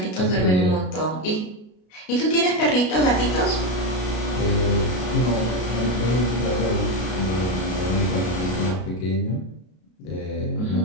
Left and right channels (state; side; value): late; right; 33 ms